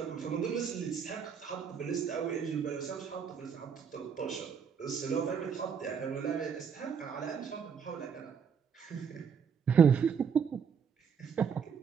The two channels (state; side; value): quieter; left; 6.8 dB